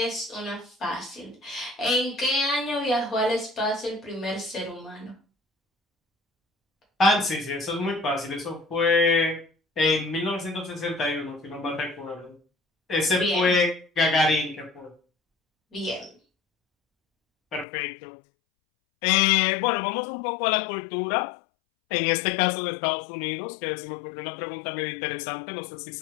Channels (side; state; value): right; drops out; at 17.7 s